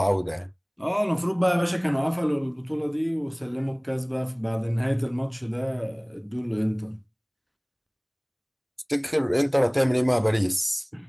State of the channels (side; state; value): both; identical; correlation 1.00